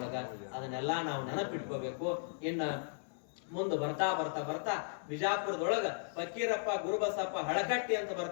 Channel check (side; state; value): right; silent; digital silence